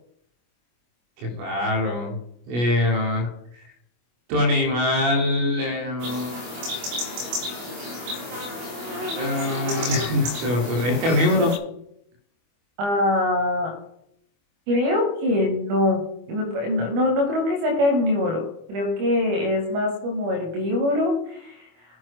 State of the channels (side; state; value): left; late; 25 ms